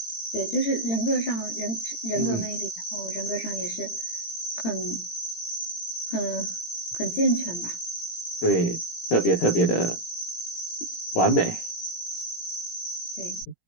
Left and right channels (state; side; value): late; right; 17 ms